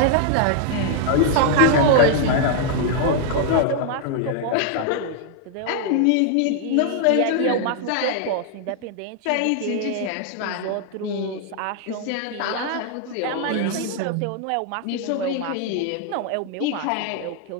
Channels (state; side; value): different; both; correlation 0.00